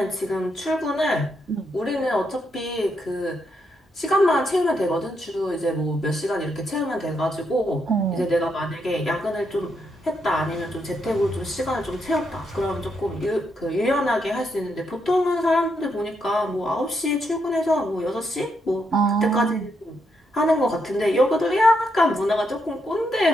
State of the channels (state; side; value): normal; both; correlation 0.79